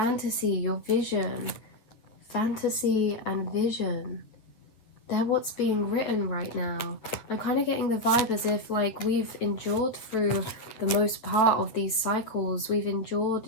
vision, fantasy and vision, they're what's being written right now. I'm kind of getting the vibe as if like we've endured through the most part of these cycles. We've endured,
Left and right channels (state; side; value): late; right; 8.7 ms